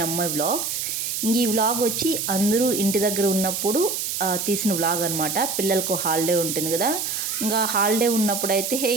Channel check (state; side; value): noise; right; hiss, 2 dB below the sound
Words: అమ్మాయి వ్లాగ్స్. ఈ వ్లాగ్ వచ్చి అందరూ ఇంటి దగ్గర ఉన్నప్పుడు తీసిన వ్లాగ్ అనమాట. పిల్లలకు హాలిడే ఉంటుంది కదా, ఇంకా హాలిడే ఉన్నప్పుడైతే